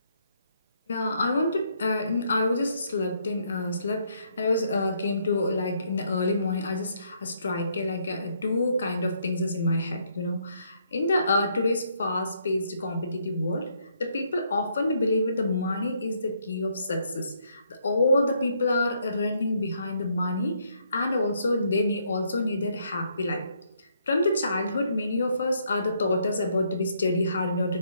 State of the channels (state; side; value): inverted; both; correlation -0.71